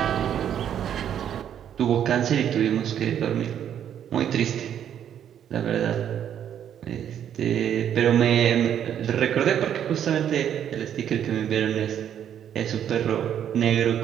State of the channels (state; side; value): quieter; left; 9.6 dB